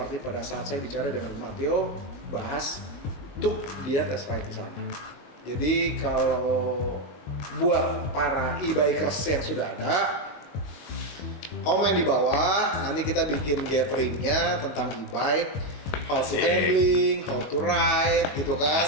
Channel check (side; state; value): right; late; 21 ms